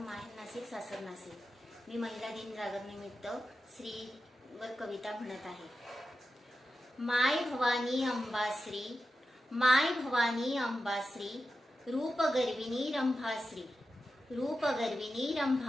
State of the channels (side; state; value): both; normal; correlation 0.91